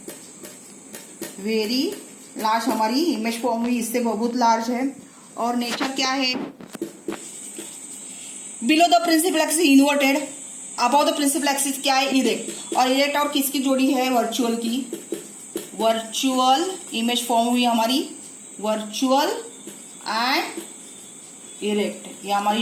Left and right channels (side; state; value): both; identical; correlation 1.00